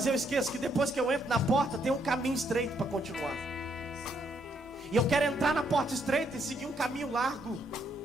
eu esqueço que depois que eu entro na porta, tem um caminho estreito para continuar. E eu quero entrar na porta estreita e seguir um caminho largo.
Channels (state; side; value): normal; both; correlation 0.73